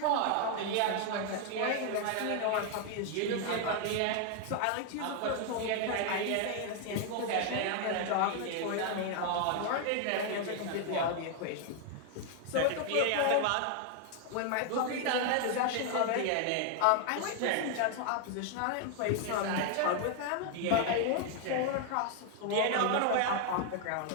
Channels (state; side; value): different; both; correlation 0.00